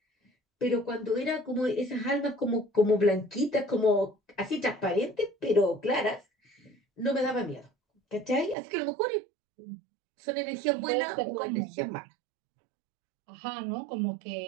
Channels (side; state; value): left; drops out; at 8.6 s